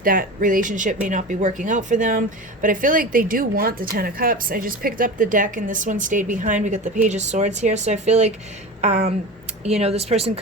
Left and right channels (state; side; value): normal; both; correlation 0.30